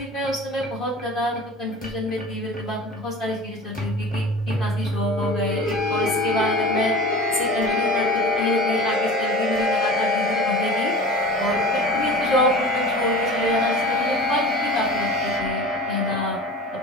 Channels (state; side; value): normal; both; correlation 0.36